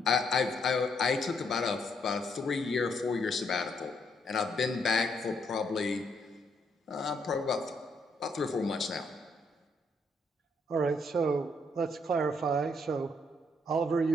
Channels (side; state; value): both; normal; correlation 0.73